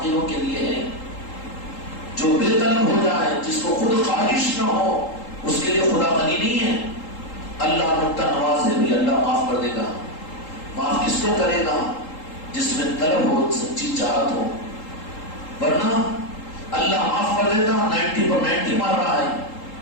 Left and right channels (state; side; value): late; right; 3.8 ms